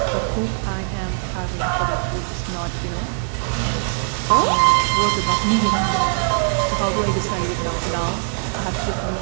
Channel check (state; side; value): silent; left; 62 dB below the other